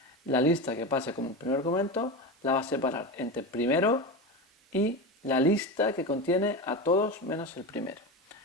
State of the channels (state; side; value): normal; both; correlation 0.21